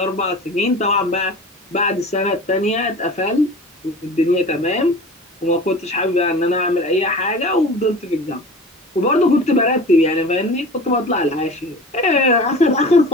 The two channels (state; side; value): normal; both; correlation 0.37